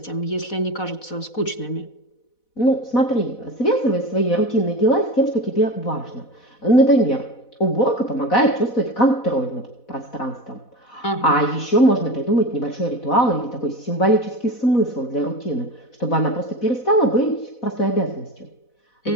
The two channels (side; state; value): right; late; 4.1 ms